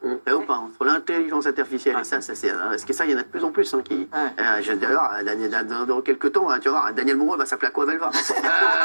Ou pas, entre l'intelligence artificielle et ça, c'est parce que ça, il y en a de plus en plus qui. D'ailleurs, dans quelques temps, tu vas voir, Daniel Moreau va s'appeler Aquavelva.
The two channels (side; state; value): both; inverted; correlation -1.00